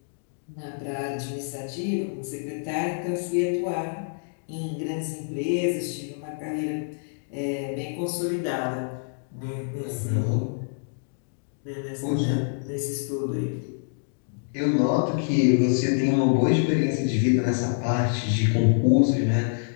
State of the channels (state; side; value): silent; right; digital silence